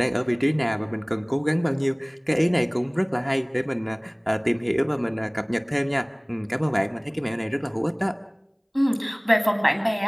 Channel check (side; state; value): both; identical; correlation 1.00